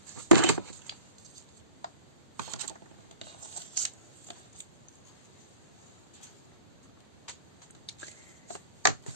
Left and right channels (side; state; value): both; inverted; correlation -0.46